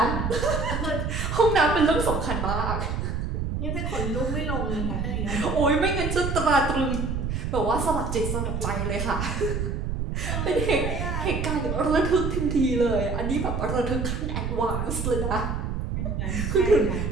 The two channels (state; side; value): noise; right; rumble, 2 dB below the sound